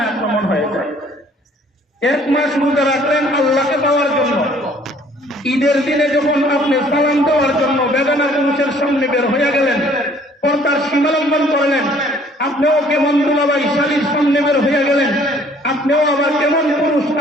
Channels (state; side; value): normal; both; correlation 0.58